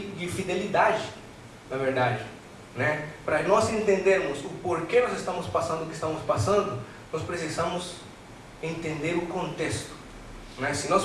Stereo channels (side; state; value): both; identical; correlation 1.00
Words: na verdade, né? Para nós entendermos o porquê nós estamos passando o que estamos passando, nós precisamos entender o contexto, né? Se nós